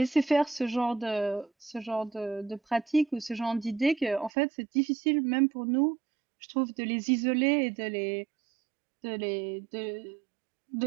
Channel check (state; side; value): drops out; left; at 4.3 s